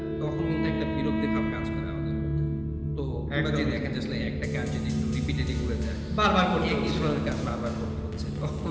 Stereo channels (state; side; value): identical; both; correlation 1.00